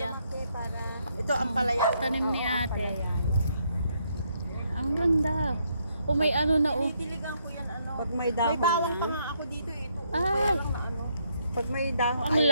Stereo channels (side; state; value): both; inverted; correlation -0.74